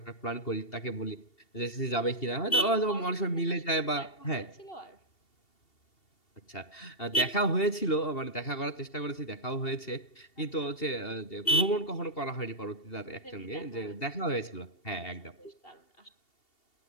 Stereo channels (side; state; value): right; late; 2.7 ms